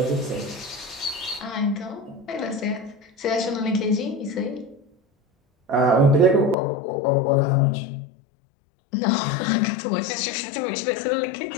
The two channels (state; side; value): drops out; right; at 6.6 s